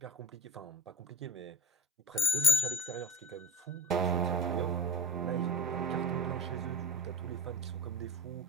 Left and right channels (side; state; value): both; normal; correlation 0.32